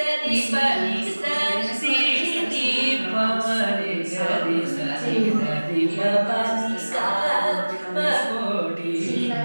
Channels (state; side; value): inverted; both; correlation -1.00